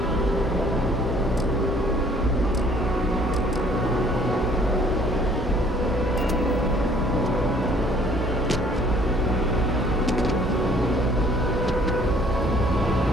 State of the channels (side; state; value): both; normal; correlation 0.58